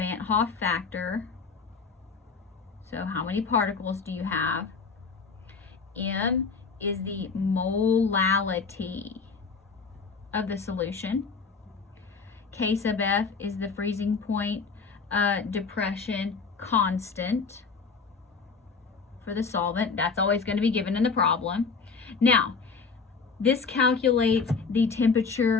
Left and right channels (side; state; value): right; quieter; 5.0 dB